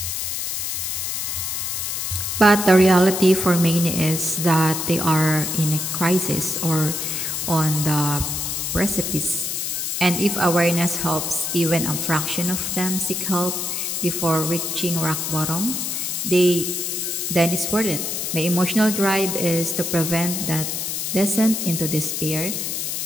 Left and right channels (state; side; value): noise; left; hiss, 2 dB below the sound